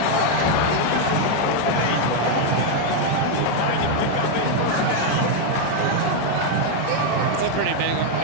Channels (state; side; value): different; both; correlation 0.01